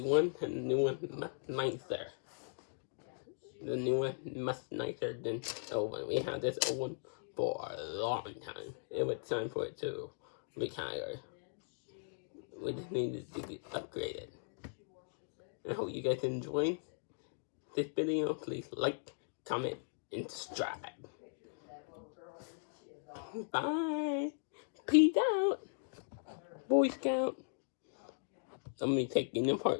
one, and the new one much nicer. The new one much nicer than the old one. We had this old one for a long time. It was time for it to retire. We just needed to get upgraded. I hope you guys enjoyed this video. Please like, comment, and stride. Bye. Peace out, Boy Scout. I'm gonna take taking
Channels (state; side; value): silent; right; digital silence